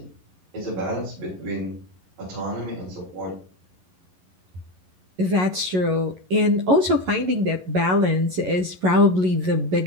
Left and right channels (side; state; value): left; late; 11 ms